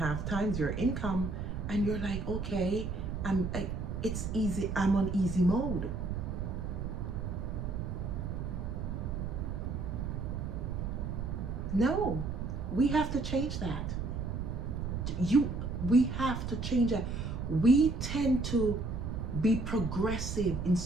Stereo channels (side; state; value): right; noise; rumble, 3 dB below the sound